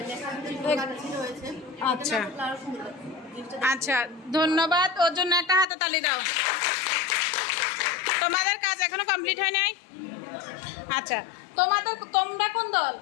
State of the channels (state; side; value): drops out; right; at 5.7 s